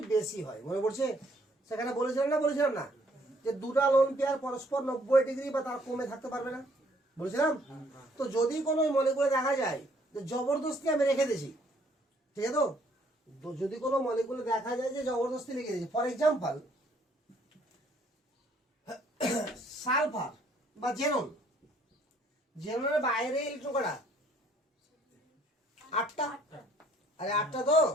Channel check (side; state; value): both; normal; correlation 0.64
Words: বেশি হয়। মনে পড়ছে? সেখানে বলেছিলাম না যে দুটা লোন পেয়ার পরস্পর 90 ডিগ্রি বা তার কমে থাকতে পারবে না, বলেছিলাম? তো যদি কোনো মলিকুলে দেখা যায় যে জবরদস্তি আমি রেখে দিয়েছি, ঠিক আছে? তো যদি কোনো মলিকুলে দেখা যায় যে জবরদস্তি রেখে দিয়েছি, ফর এক্সাম্পল সালফার বা জেননের বাইরে ইলেকট্রন কটা? 8টা। আরে 8টা তো।